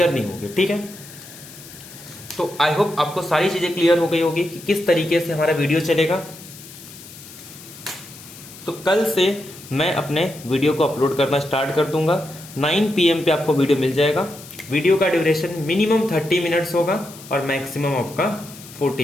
होगी। ठीक है, तो आई होप आपको सारी चीजें क्लियर हो गई होगी कि किस तरीके से हमारा वीडियो चलेगा। तो कल से मैं अपने वीडियो को अपलोड करना स्टार्ट कर दूंगा। 9 PM पे आपको वीडियो मिल जाएगा। वीडियो का ड्यूरेशन मिनिमम 30 मिनट्स होगा और मैक्सिमम आपका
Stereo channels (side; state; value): left; noise; hiss, 17 dB below the sound